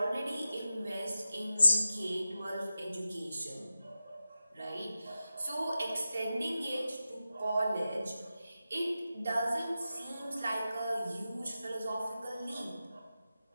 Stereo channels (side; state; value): both; inverted; correlation -0.92